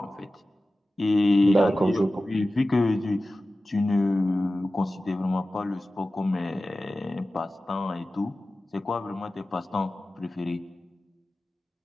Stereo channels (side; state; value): both; normal; correlation 0.95